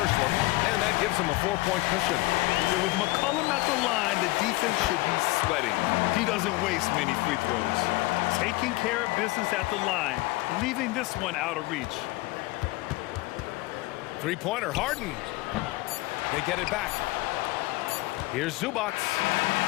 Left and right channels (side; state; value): right; quieter; 20.9 dB